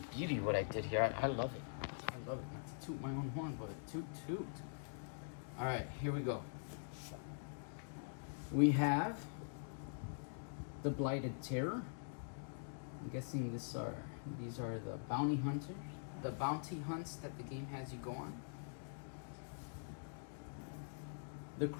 what I did here. I love it. I love it. Not to toot my own horn, but toot. All right, here we go. We have the Blighted Terror. I'm guessing these are the bounty hunters, the bounty hunts that the game has you go on. The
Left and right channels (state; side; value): silent; right; digital silence